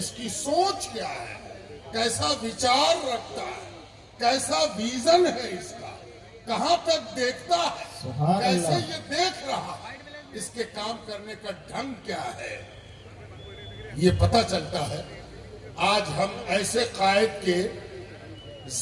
کی سوچ کیا ہے، کیسا وچار رکھتا ہے، کیسا ویژن ہے اس کا، کہاں تک دیکھتا ہے، سبحان کیسے اللہ۔ یہ دیکھ رہا ہے، اس کے کام کرنے کا ڈھنگ کیا ہے، یہ پتہ چلتا ہے۔ آج ہم ایسے قائد کے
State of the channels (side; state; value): both; identical; correlation 1.00